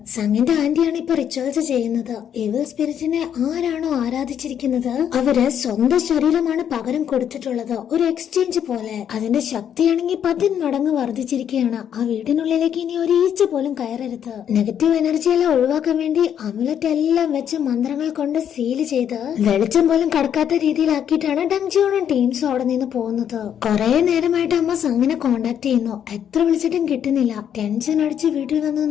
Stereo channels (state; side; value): quieter; right; 9.1 dB